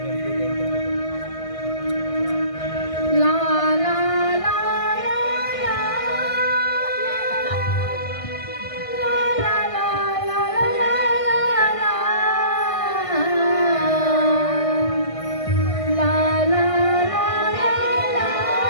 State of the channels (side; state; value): right; late; 1.5 ms